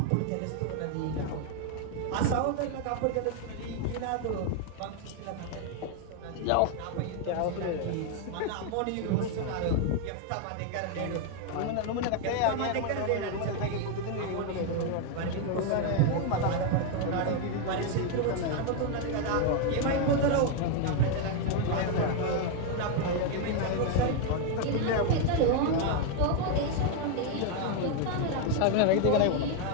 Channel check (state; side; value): different; both; correlation 0.01